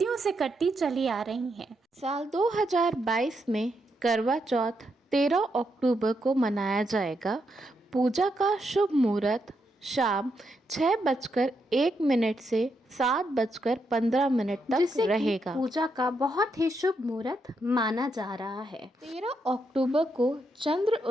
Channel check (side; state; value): both; normal; correlation 0.81